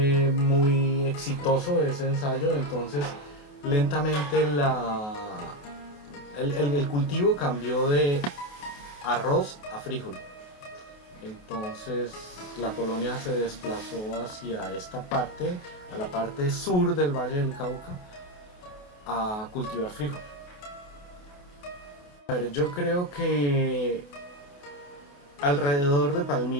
muy exitoso ese ensayo. Entonces lentamente el cultivo cambió de arroz a frijol. Entonces la colonia se desplazó hacia esta parte, a la parte sur del Valle del Cauca, a cultivar frijol. A ver, yo creo que alrededor de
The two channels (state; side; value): late; right; 28 ms